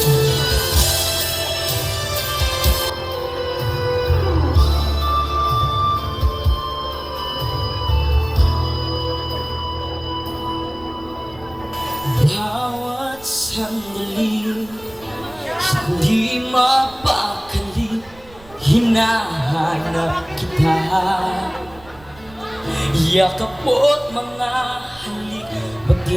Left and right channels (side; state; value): right; noise; rumble, 23 dB below the sound